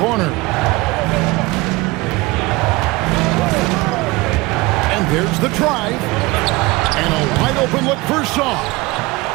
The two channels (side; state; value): left; quieter; 22.2 dB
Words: And there's the drive. And a wide open look for Shaw.